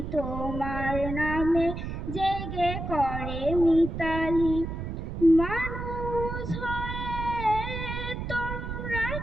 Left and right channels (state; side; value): noise; right; rumble, 5 dB below the sound